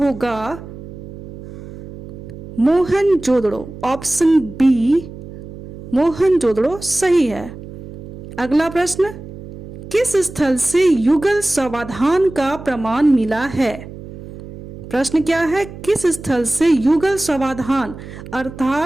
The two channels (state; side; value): noise; right; hum, 14 dB below the sound